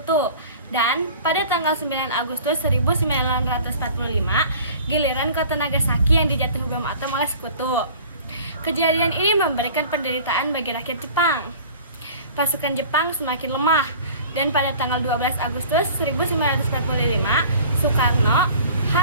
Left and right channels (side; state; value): both; inverted; correlation -0.45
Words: Dan pada tanggal 9 Agustus 1945, giliran kota Nagasaki yang dijatuhi bom atom oleh sekutu. Kejadian ini memberikan penderitaan bagi rakyat Jepang. Pasukan Jepang semakin lemah, dan pada tanggal 12 Agustus 1945, Soekarno,